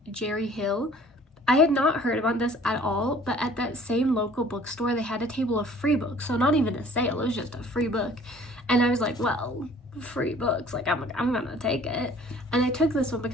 Jerry Hill. I had not heard about this at all, but at that same local bookstore, they had a table of free books. So not even a sale, it was just a free book. And I was like, well, free books, like I'm gonna take it. And I took this one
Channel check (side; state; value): both; normal; correlation 0.53